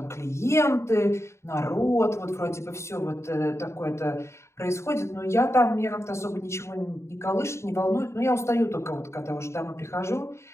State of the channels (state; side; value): late; right; 0.13 ms